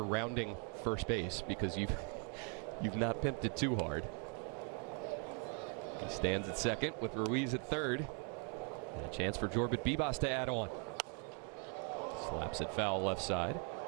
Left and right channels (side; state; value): left; quieter; 39.2 dB